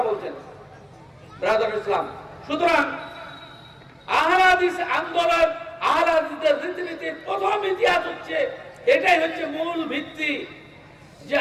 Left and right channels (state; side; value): identical; both; correlation 1.00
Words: বলছেন। ব্রাদার ইসলাম, সুতরাং আহলে হাদিস আন্দোলন, আহলে হাদিসদের রীতিনীতির প্রথম ইতিহাস হচ্ছে, এটাই হচ্ছে মূল ভিত্তি যে